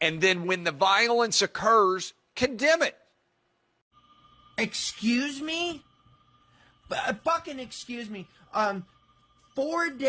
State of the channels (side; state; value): both; identical; correlation 1.00